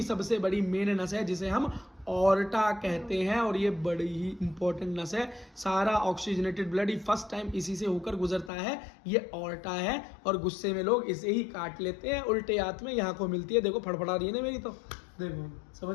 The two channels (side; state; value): right; drops out; at 8.5 s